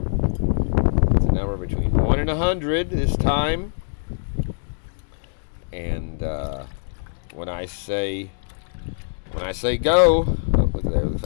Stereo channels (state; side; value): silent; right; digital silence